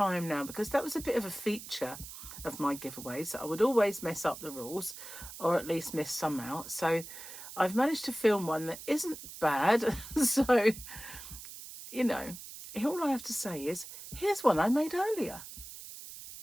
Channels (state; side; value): noise; right; hiss, 13 dB below the sound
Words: now, because that was a bit of a feature of my giveaways, that I would always mess up the rules, or at least miss some out. So I've managed to film one that isn't bad. So, you know, all I have to say is, here's one I made earlier.